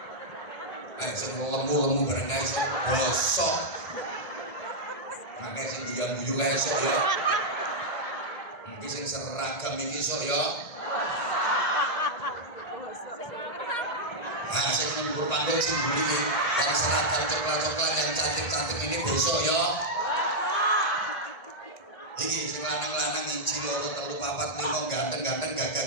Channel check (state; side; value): late; right; 1.9 ms